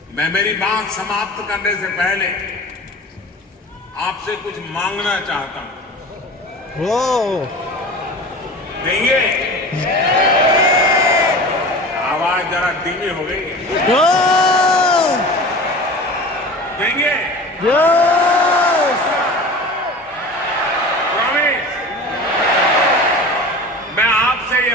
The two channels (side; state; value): both; normal; correlation 0.36